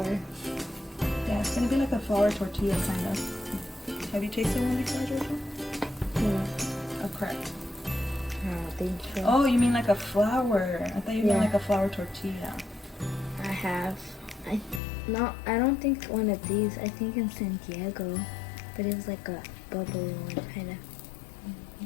Yeah, it's gonna be like a flour tortilla kind of. Have you tasted one before, Georgia? Yeah. A crepe. I don't think so. Oh, you mean like a flour? I thought you meant like a flour tortilla. I have. I don't think one of these. I think in San Diego, but it was like a bubble one kind of.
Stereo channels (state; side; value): drops out; right; at 14.8 s